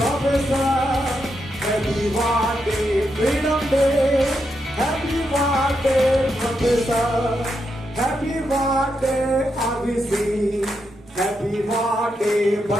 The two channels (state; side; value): normal; both; correlation 0.83